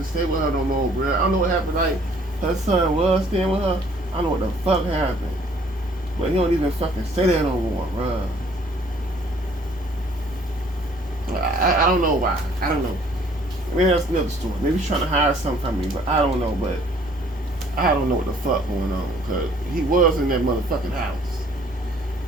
stay with her no more, bro. I don't know what happened. Like, her son was staying with her. I don't know what the fuck happened. But he don't even fucking say that no more, bro. I don't know why. I don't know. Maybe that's another story. Maybe he's trying to hire something from me, but I don't know. But I don't know what the fuck going on, because he was in that motherfucking house.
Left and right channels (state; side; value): normal; both; correlation 0.59